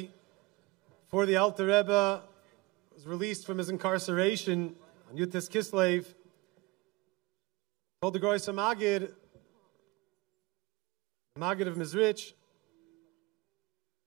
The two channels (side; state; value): left; quieter; 22.4 dB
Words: before the Alter Rebbe was released from his incarceration on Yutis Kislev, told the Groisa Magid, Magid of Mizrich,